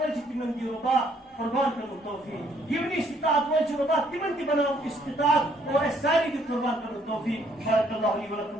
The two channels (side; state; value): both; normal; correlation 0.66